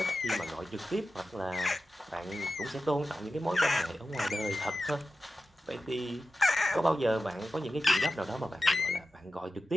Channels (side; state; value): both; normal; correlation 0.93